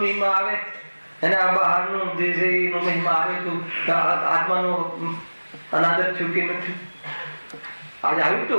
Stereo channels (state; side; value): inverted; both; correlation -1.00